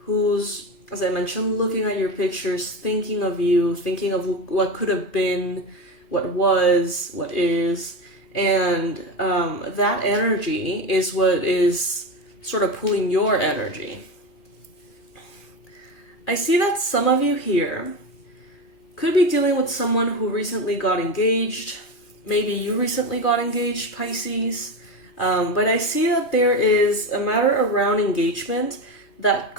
as I mentioned, looking at your pictures, thinking of you, thinking of what could have been, what was, what is. And that energy is what is sort of pulling your energy. I see that some of you here could be dealing with someone who recently got engaged. Maybe you recently got engaged, Pisces. But I see that there is a matter around engagement that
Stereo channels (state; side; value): late; right; 2.5 ms